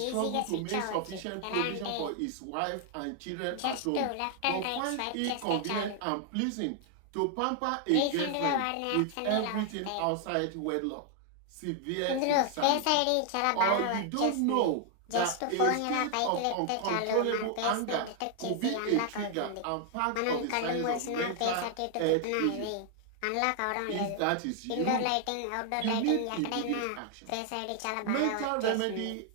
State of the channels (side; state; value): both; different; correlation 0.00